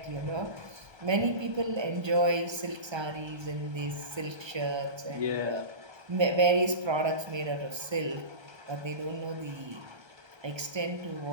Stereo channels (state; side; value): late; left; 1.3 ms